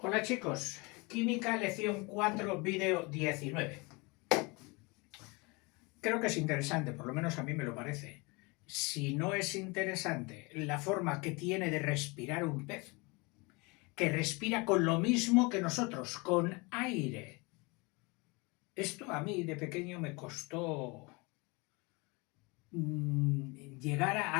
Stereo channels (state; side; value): quieter; right; 27.2 dB